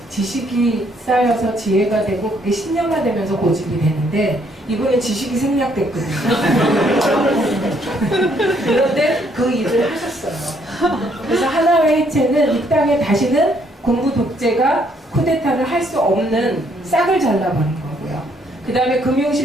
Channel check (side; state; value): both; normal; correlation 0.68